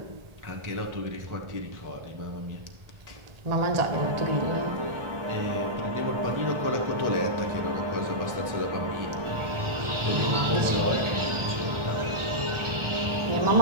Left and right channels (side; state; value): left; late; 1.4 ms